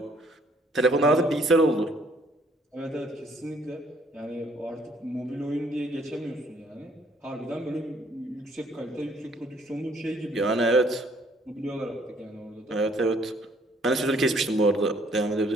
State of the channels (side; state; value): both; normal; correlation 0.63